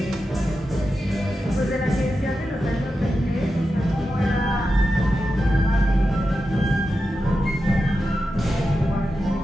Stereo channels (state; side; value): normal; both; correlation 0.90